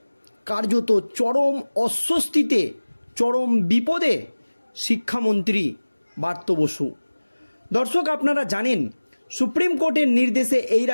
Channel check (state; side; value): inverted; both; correlation -1.00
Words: কার্যত চরম অস্বস্তিতে, চরম বিপদে শিক্ষামন্ত্রী ব্রাত্য বসু। দর্শক, আপনারা জানেন সুপ্রিম কোর্টের নির্দেশে এই